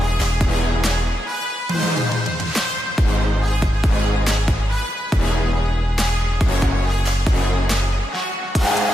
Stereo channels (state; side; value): normal; both; correlation 0.86